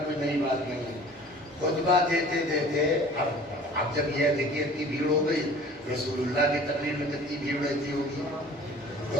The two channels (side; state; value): both; normal; correlation 0.47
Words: کوئی نئی بات نہیں ہے. خطبہ دیتے دیتے اب جب یہ دیکھیے اتنی بھیڑ ہو گئی, رسول اللہ کی تقریر میں کتنی بھیڑ رہتی ہوگی.